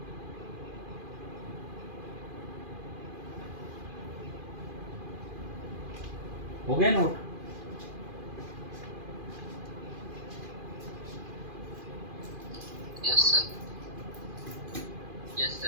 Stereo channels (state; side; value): late; left; 2.4 ms